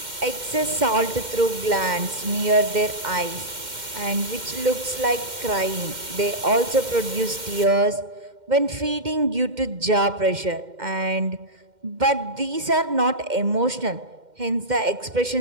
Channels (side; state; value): left; late; 2.1 ms